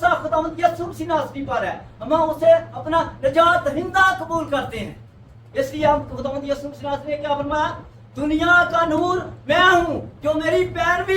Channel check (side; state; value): both; identical; correlation 1.00